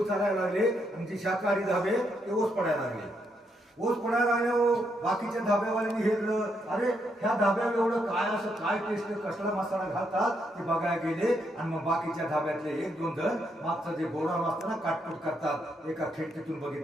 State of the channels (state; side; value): normal; both; correlation 0.78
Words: चालायला लागले, आणि जे शाकाहारी धाबे ते ओस पडायला लागले. बाकीच्या धाब्यावाल्यांनी हेरलं, अरे ह्या धाब्यावर एवढं काय टेस्ट, कसला मसाला घालतात ते बघायला गेले. आणि मग बाकीच्या धाब्यातले 1-2 जण मागचं जे गोडाऊन असतं ना, काटकूट करतात. एका खिडकीतून